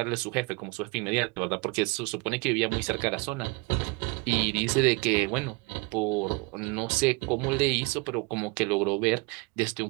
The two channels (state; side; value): quieter; left; 27.6 dB